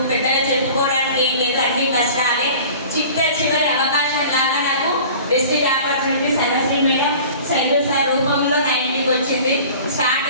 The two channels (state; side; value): inverted; both; correlation -0.43